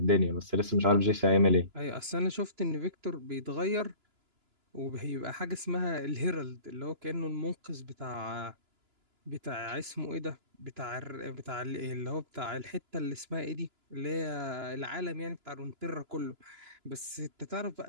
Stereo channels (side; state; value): left; late; 2.9 ms